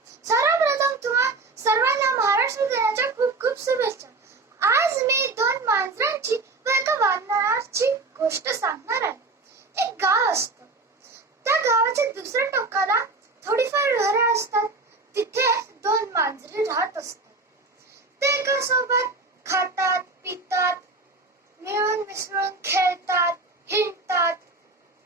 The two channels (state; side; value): quieter; left; 3.6 dB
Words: सर्वप्रथम तुम्हा सर्वांना महाराष्ट्र दिनाच्या खूप खूप शुभेच्छा. आज मी दोन मांजरांची व एका वानराची गोष्ट सांगणार आहे. एक गाव असतं. त्या गावाच्या दुसऱ्या टोकाला थोडीफार घरे असतात. तिथे दोन मांजरे राहत असतात. ते एका सोबत खातात, पितात, मिळून मिसळून खेळतात, हिंडतात